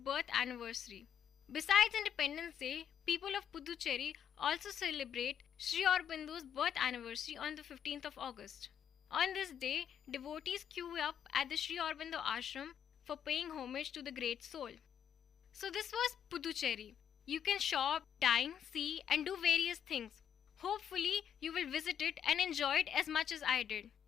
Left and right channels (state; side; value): quieter; right; 8.9 dB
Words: anniversary. Besides Independence Day, people of Puducherry also celebrate Sri Aurobindo's birth anniversary on the 15th of August. On this day, devotees queue up at the Sri Aurobindo ashram for paying homage to the great soul. So this was Puducherry. You can shop, dine, see and do various things. Hopefully, you will visit it and enjoy it as much as I did.